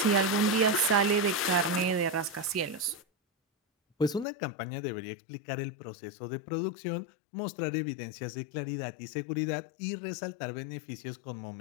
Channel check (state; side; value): drops out; right; at 4.2 s